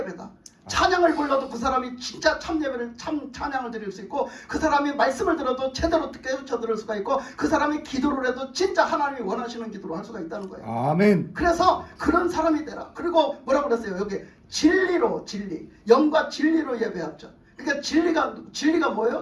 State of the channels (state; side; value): identical; both; correlation 1.00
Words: 찬양을 불러도 그 사람이 진짜 참 예배를 찬양을 드릴 수 있고 그 사람이 말씀을 들어도 제대로 깨우쳐 들을 수가 있고 그 사람이 기도를 해도 진짜 하나님이 원하시는 기도를 할 수가 있다는 거예요. 아멘. 그래서 그런 사람이 되라. 그리고 뭐라고 그랬어요? 여기 진리로 영과 진리로 예배하죠. 그러니까 진리가